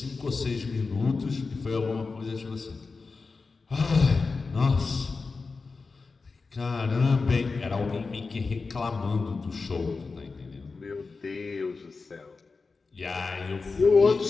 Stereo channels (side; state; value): right; quieter; 4.3 dB